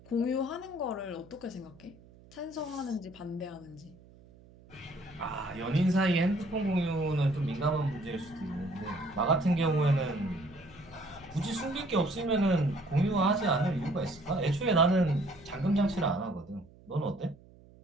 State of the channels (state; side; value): noise; right; hum, 24 dB below the sound